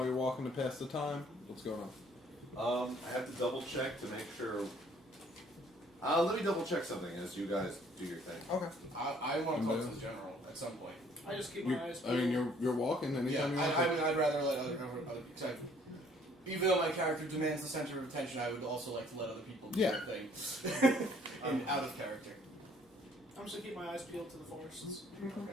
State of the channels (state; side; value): normal; both; correlation 0.60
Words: you're walking to pass the time? What's going on? I have to double check to make sure. Let me double check something as you guys do your thing. Okay. I want to talk to the general at some point. I just keep my eyes I mean, peeled. you're walking. Anytime you want to. I'd rather let other because even though my character demands the center of attention, I would also like to let other people do their thing and out of character. I'm just gonna keep my eyes peeled to the forests.